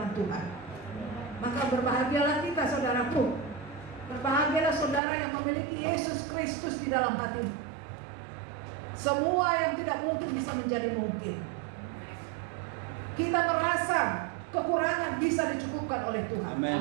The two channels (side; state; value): left; drops out; at 5.0 s